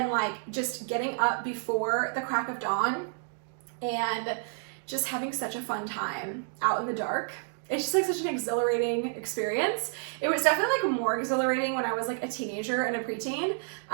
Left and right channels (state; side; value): silent; left; 58 dB below the other